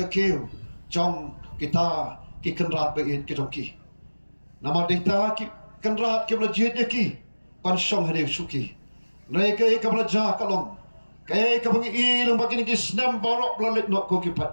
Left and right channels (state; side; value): inverted; both; correlation -1.00